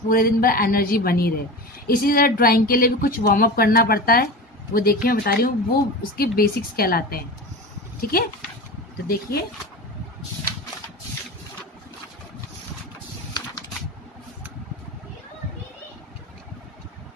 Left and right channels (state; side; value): normal; both; correlation 0.29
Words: दिन भर एनर्जी बनी रहे। इसी तरह ड्राइंग के लिए भी कुछ वार्म अप करना पड़ता है। वो देखिए, मैं बता रही हूँ, वो उसके बेसिक्स कहलाते हैं, ठीक है। तो देखिए,